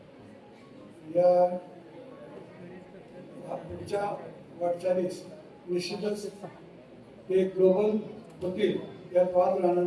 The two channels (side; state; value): both; identical; correlation 1.00